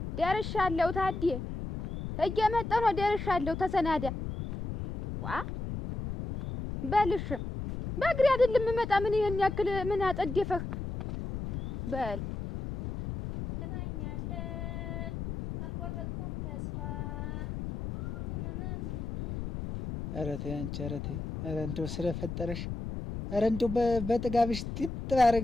ደርሻለሁ ታዴ እየመጣሁ ነው ደርሻለሁ ተሰናዳ ዋ በልሽ በእግሬ አይደለም የምመጣ ምን ይሄን ያክል ምን አጠደፈህ በል ተናኛለን አልቆረጥኩም ተስፋ ኧረ ተይ አንቺ ኧረ ተይ ኧረ እንደው ስለፈጠረሽ ኧረ እንደው በጥጋብሽ ጥጥ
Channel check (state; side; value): noise; left; rumble, 6 dB below the sound